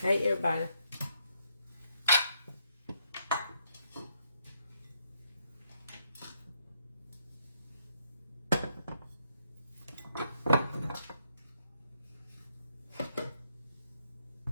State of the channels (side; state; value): both; inverted; correlation -0.74